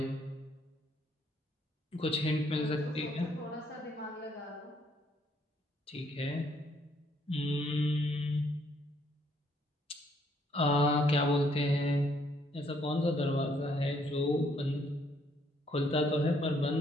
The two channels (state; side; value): normal; both; correlation 0.68